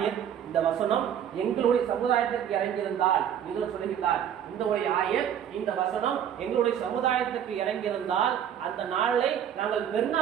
இந்த வசனம் எங்களுடைய சமுதாயத்திற்கு இறங்கியிருந்தால், யூதன் சொல்லுகின்றார், இந்த வசனம் எங்களுடைய சமுதாயத்துக்கு இறங்கியிருந்தால் அந்த நாளை நாங்கள்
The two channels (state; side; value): quieter; left; 9.3 dB